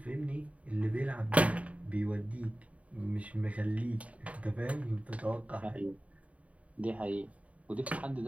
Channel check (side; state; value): left; late; 0.067 ms